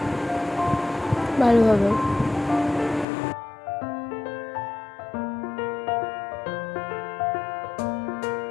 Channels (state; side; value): drops out; right; at 3.1 s